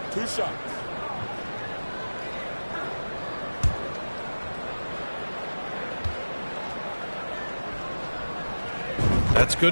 2 shots. That's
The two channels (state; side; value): inverted; both; correlation -1.00